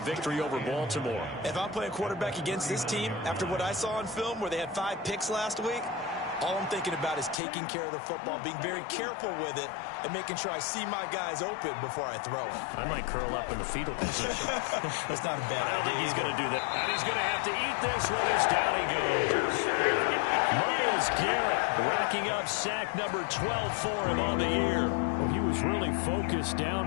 over Baltimore. If I'm playing quarterback against this team, after what I saw on film where they had 5 picks last week, all I'm thinking about is taking care of the football, being very careful with it, and making sure I see my guys open before I throw it. I might curl up in the fetal position. That's not a bad idea. I don't think he's going to do that. And he's going to have to eat this one as down he goes. Myles Garrett racking up sack number 12 for him on the year. Well, he was really focused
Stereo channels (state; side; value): drops out; right; at 7.4 s